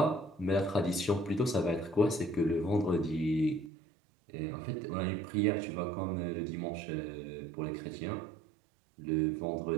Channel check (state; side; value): drops out; left; at 3.7 s